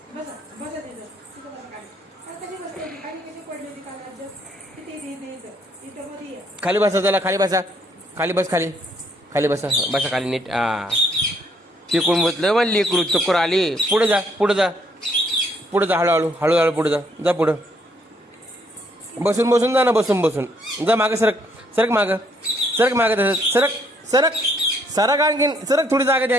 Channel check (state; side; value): normal; both; correlation 0.68